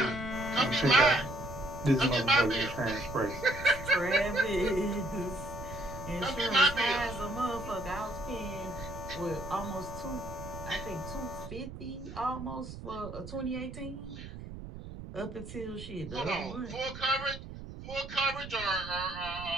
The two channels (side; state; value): right; noise; rumble, 11 dB below the sound